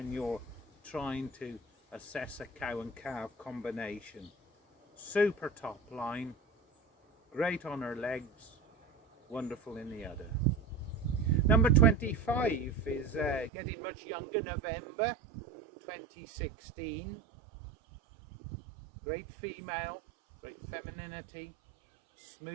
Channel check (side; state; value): left; drops out; at 13.5 s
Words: you're trying to assess a cow and calf combination. Super top line, great on her legs, wonderful in the udder. Number 25 is getting much younger, November 2016. Great female, great femininity,